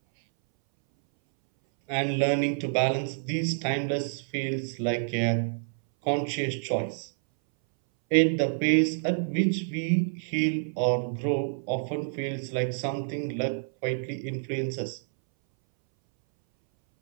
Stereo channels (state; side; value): silent; left; 59 dB below the other